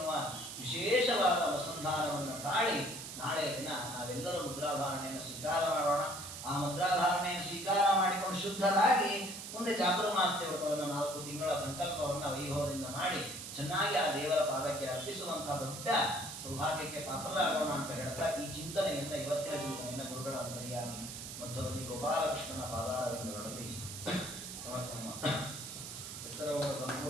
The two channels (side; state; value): right; noise; hiss, 9 dB below the sound